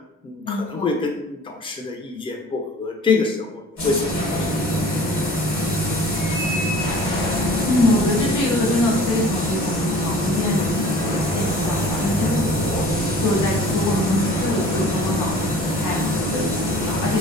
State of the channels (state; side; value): normal; both; correlation 0.46